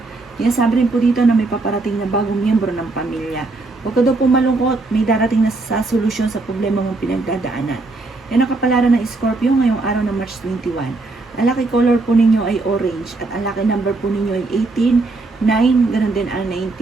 Yan sabi rin po dito na may paparating na bagong miyembro ng pamilya. Huwag ka daw po malungkot, may darating na sa solusyon sa problema mong pinagdadaanan. Yan ang kapalaran ng Scorpio ngayong araw ng March 21. Ang lucky color po ninyo ay orange at ang lucky number po ninyo ay 18, 9, ganun din ang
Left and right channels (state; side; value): quieter; left; 3.3 dB